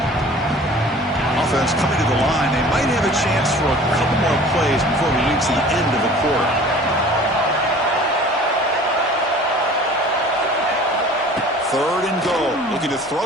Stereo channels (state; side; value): normal; both; correlation 0.46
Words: Offense coming to the line. They might have a chance for a couple more plays before we reach the end of the quarter. Third and goal. Looking to